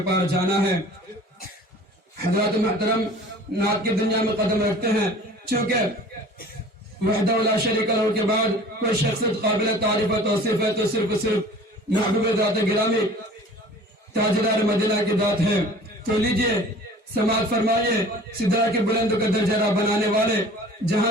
پار جانا ہے۔ حضرات محترم نعت کی دنیا میں قدم رکھتے ہیں، چونکہ وحدہ لا شریک لہ کے بعد کوئی شخصیت قابل تعریف و توصیف ہے تو صرف محبوب ذات گرامی تاجدار مدینہ کی ذات ہے۔ تو لیجئے سماعت فرمائیے سدرا کے بلند کا درجہ بنانے والے،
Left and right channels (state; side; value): normal; both; correlation 0.45